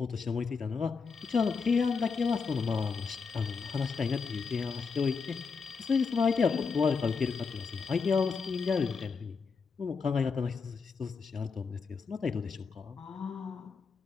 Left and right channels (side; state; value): right; quieter; 5.2 dB